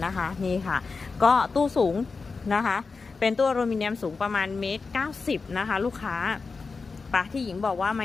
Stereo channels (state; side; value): quieter; right; 4.5 dB